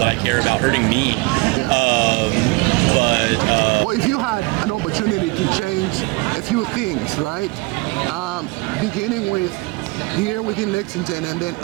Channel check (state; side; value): quieter; left; 25.3 dB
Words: I care about, hurting me. Well, if you had an opportunity to change a few things, right? Beginning with here within Lexington and then